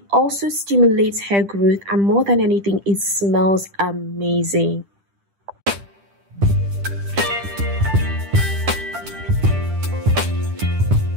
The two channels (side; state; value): left; late; 10 ms